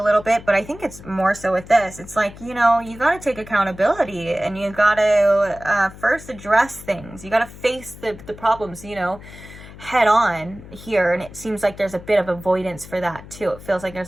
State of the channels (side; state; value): left; noise; hum, 17 dB below the sound